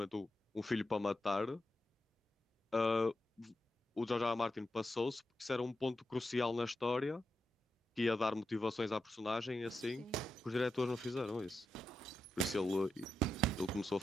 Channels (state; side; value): normal; both; correlation 0.87